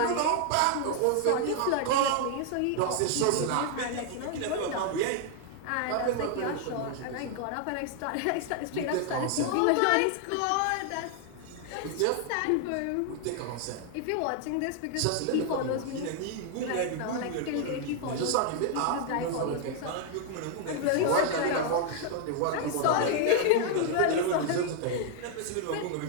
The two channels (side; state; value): both; different; correlation 0.00